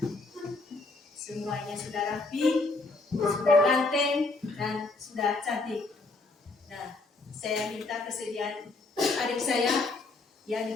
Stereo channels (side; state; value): right; quieter; 3.4 dB